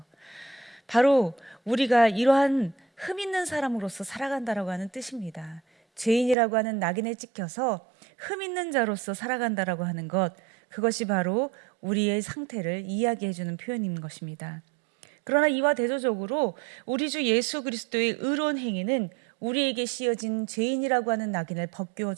바로 우리가 이러한 흠 있는 사람으로서 살아간다라고 하는 뜻입니다. 죄인이라고 하는 낙인에 찍혀서 흠 있는 자로서 살아간다라고 하는 것, 그것이 바로 우리의 상태를 이야기해 주는 표현인 것입니다. 그러나 이와 대조적으로 우리 주 예수 그리스도의 의로운 행위는 우리에게 씌어진 죄인이라고 하는 낙인을 벗겨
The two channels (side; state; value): left; drops out; at 6.4 s